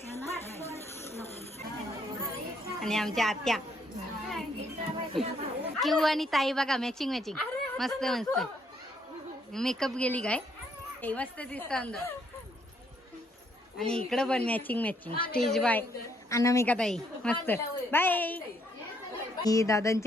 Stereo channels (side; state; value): both; normal; correlation 0.70